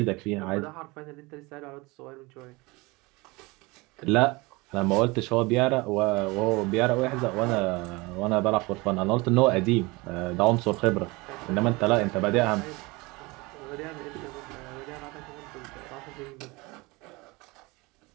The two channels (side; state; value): left; quieter; 24.3 dB